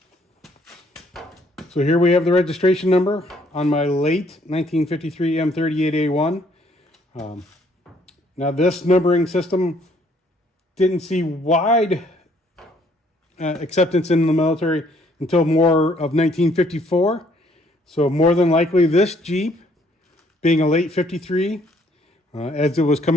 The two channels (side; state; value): both; normal; correlation 0.64